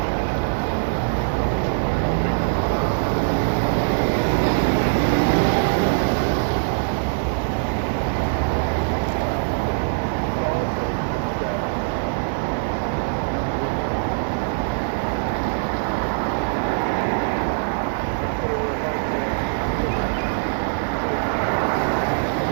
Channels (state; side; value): silent; left; digital silence